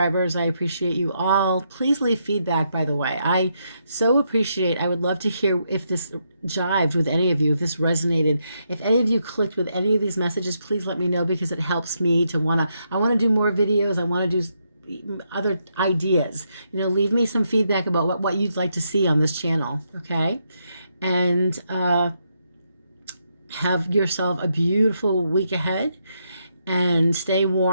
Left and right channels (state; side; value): inverted; both; correlation -0.79